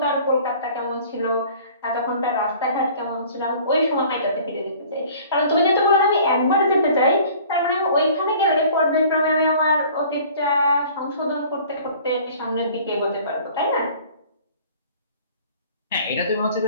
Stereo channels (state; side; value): inverted; both; correlation -0.49